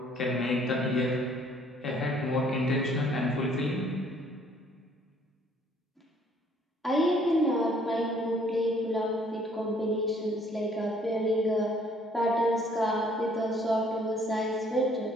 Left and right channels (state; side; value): normal; both; correlation 0.61